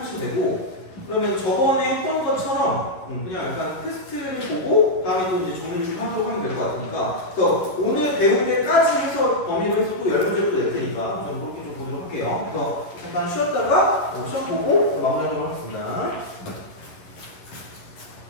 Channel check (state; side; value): late; right; 11 ms